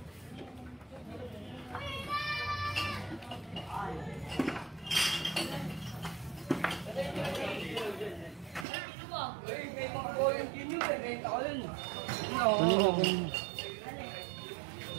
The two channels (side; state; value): left; drops out; at 8.7 s